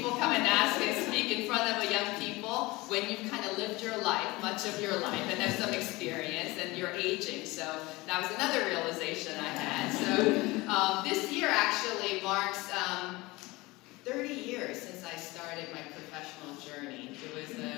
come and ask and speak in front of young people when you've kind of lived your life, much of your life, and have some experience, and you're aging. So that was another realization I had. So this year actually marks 30 years since I started my professional journey. It was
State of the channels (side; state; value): right; quieter; 21.9 dB